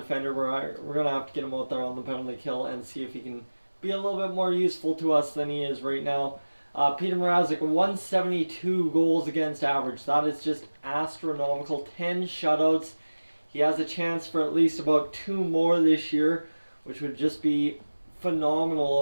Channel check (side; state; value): both; inverted; correlation -1.00